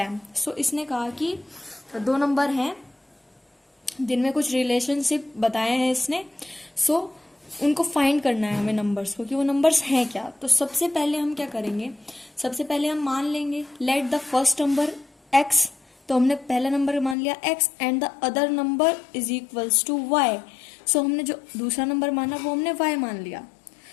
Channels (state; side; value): drops out; right; at 17.2 s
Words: इसने कहा कि दो नंबर हैं जिनमें कुछ रिलेशनशिप बताए हैं इसने। उनको फाइंड करना है हमें नंबर्स को, कि वो नंबर्स हैं क्या। तो सबसे पहले हम क्या करेंगे, सबसे पहले हम मान लेंगे let the first number x। तो हमने पहला नंबर मान लिया x and the other number is equals to y। हमने जो दूसरा नंबर माना वो हमने y मान लिया।